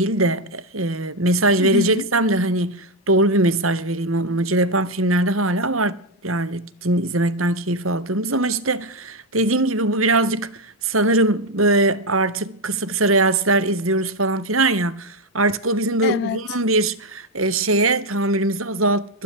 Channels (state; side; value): normal; both; correlation 0.07